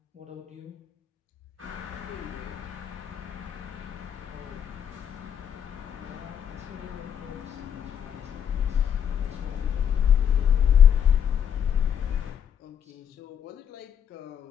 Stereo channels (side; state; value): right; quieter; 8.6 dB